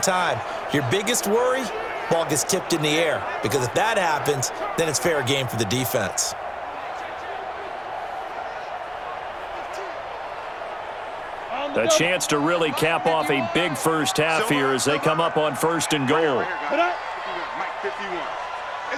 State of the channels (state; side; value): identical; both; correlation 1.00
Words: Your biggest worry, ball gets tipped in the air, because if that happens, then it's fair game for the defense. A chance to really cap off a big first half here as they come up on 1st and goal. Mike 51.